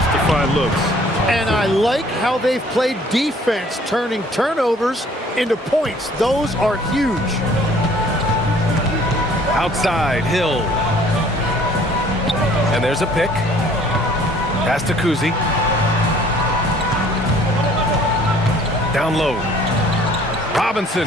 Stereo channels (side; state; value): both; normal; correlation 0.56